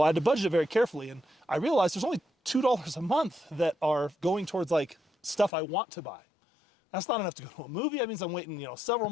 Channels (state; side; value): drops out; right; at 5.5 s